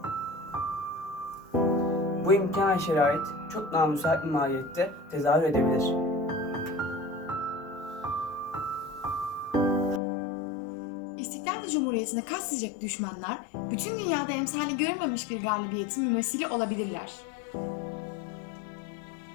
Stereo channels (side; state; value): right; drops out; at 10.0 s